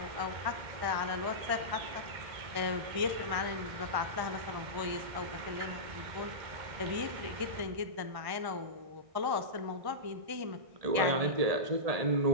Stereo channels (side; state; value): left; late; 1.1 ms